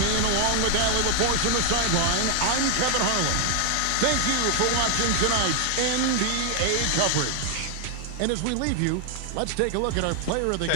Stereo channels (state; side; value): different; both; correlation 0.00